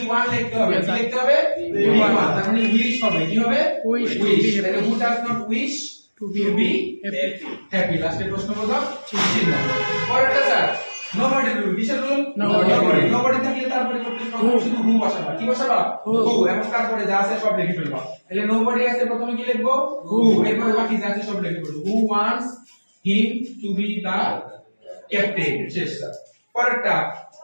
লিখতে হবে কি লিখতে হবে v1 তার মানে উইশ হবে কি হবে উইশ তাহলে who does not wish to be happy লাস্টে প্রশ্নবোধক চিহ্ন পরেরটা স্যার nobody rule কিসের রুল nobody থাকলে তার পরিবর্তে শুধু হু বসাবা কি বসাবা হু এবং তারপরে যা আছে সব লিখে ফেলবা তাহলে nobody আছে প্রথমে কি লিখবো হু এরপরে বাকি যা আছে সব লিখে ফেলবো who wants him to be the captain শেষটা পরেরটা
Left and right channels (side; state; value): both; inverted; correlation -1.00